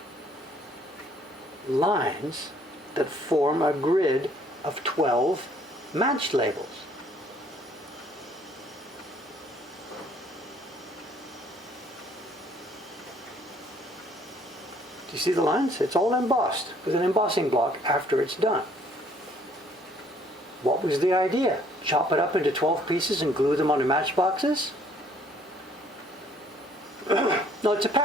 lines that form a grid of 12 match labels. You see the lines? It's all embossed with an embossing block after it's done. What was the idea? Chop it up into 12 pieces and glue them onto matchboxes? No, it's a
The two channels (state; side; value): normal; both; correlation 0.62